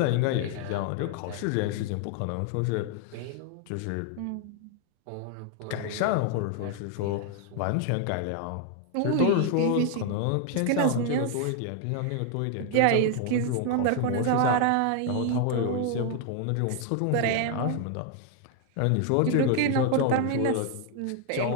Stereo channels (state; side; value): different; both; correlation 0.00